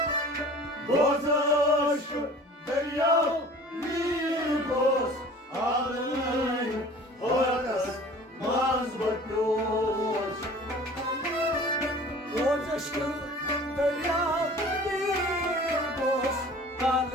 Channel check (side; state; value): both; normal; correlation 0.45